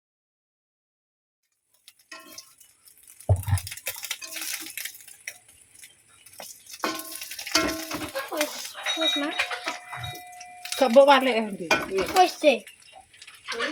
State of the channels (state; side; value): identical; both; correlation 1.00